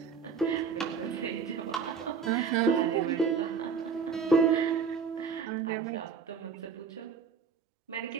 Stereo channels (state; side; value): quieter; left; 5.9 dB